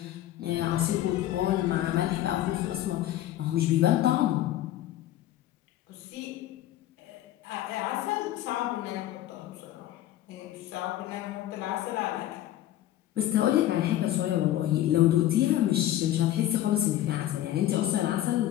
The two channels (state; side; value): quieter; right; 13.5 dB